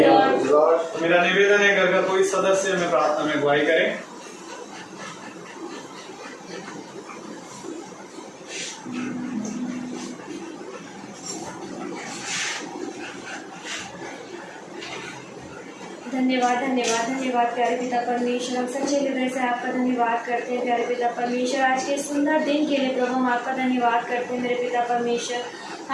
तो मेरा निवेदन है, घर का कोई सदस्य हमें प्रार्थना में अगुवाई करें। धन्यवाद धन्यवाद धन्यवाद प्यारे पिता परमेश्वर, हम सच्चे हृदय से आपका धन्यवाद करते हैं प्यारे पिता परमेश्वर। आज के सुंदर दिन के लिए प्रभु हम आपका धन्यवाद करते हैं मेरे पिता परमेश्वर।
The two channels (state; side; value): identical; both; correlation 1.00